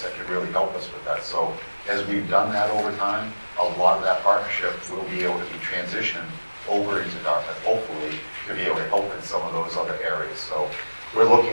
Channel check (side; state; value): both; inverted; correlation -1.00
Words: that can really help us with that. So as we've done that over time, a lot of that partnership will be able to be transitioned over into Dartmouth, hopefully, to be able to help in some of those other areas. So we're